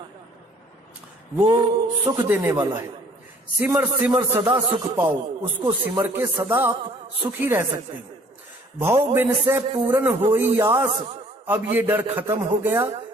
वो सुख देने वाला है। सिमर सिमर सदा सुख पाओ, उसको सिमर के सदा आप सुखी रह सकते हैं। भव बिन से पूर्ण होई आस, अब ये डर खत्म हो गया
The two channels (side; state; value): both; normal; correlation 0.56